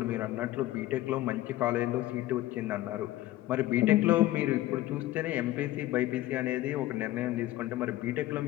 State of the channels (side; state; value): right; quieter; 15.5 dB